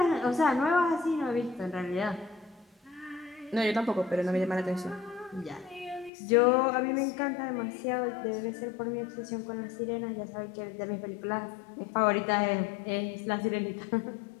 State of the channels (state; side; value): drops out; right; at 6.1 s